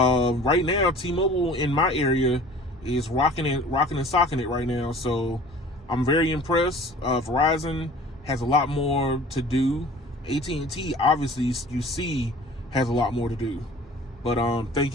now, T-Mobile in my area is rocking and socking it right now. So I'm very impressed. Verizon has a lot more to do. AT&T, obviously, you see, has a lot more to do. But thank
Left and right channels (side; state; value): both; normal; correlation 0.46